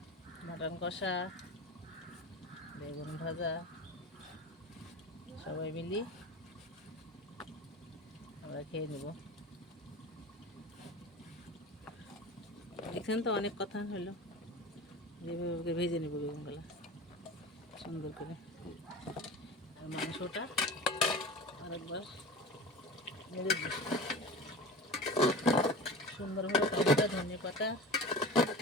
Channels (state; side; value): normal; both; correlation 0.33